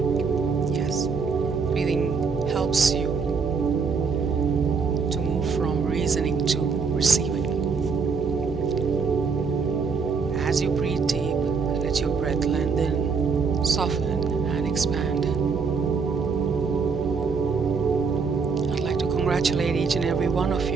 Yes, breathing helps you to move from reasoning to receiving. As you breathe deep, let your breath lengthen, soften, and expand. I'd like to congratulate each and every one of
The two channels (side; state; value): left; quieter; 5.3 dB